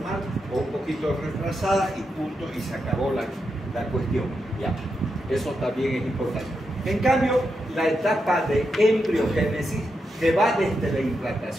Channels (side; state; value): both; normal; correlation 0.85